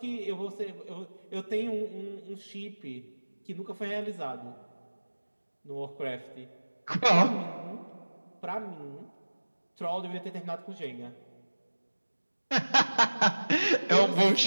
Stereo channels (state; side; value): inverted; both; correlation -1.00